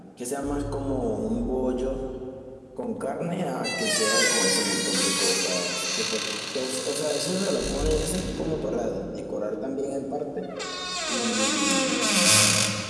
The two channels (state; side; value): identical; both; correlation 1.00